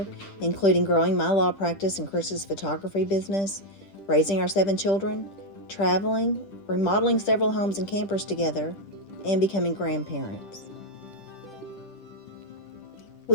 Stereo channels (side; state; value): right; late; 10 ms